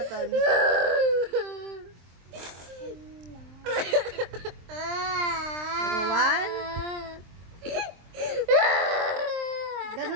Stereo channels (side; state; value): left; late; 23 ms